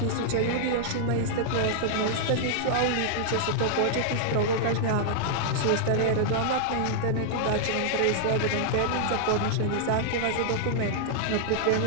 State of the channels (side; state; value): both; different; correlation -0.01